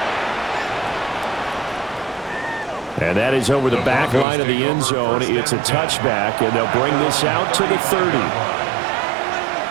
And that is over the back line of the end zone. It's a touchback, and they'll bring this out to the 30.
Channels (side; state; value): left; drops out; at 4.2 s